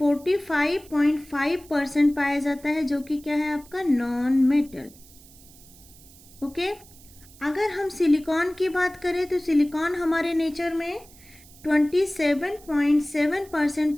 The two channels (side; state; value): right; noise; hiss, 23 dB below the sound